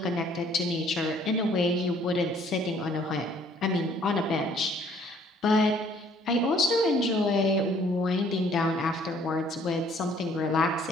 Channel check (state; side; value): normal; both; correlation 0.60